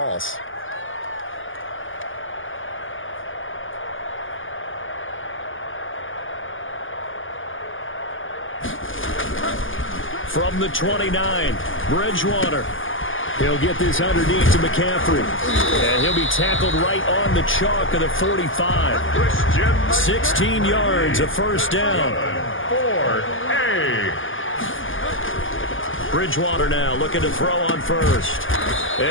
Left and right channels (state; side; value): late; right; 0.58 ms